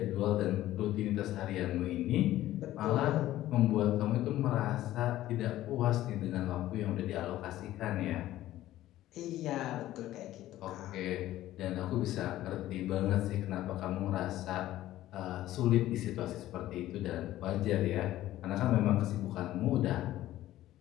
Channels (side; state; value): right; quieter; 14.5 dB